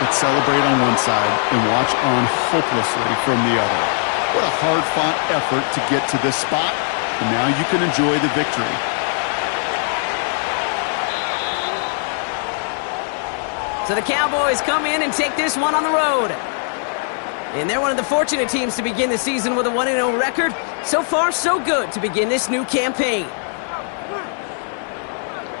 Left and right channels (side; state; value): right; silent; 66 dB below the other